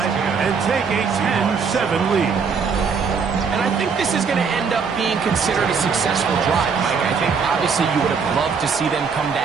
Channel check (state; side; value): quieter; left; 5.7 dB